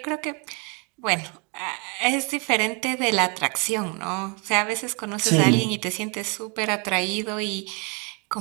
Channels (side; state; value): left; quieter; 34.1 dB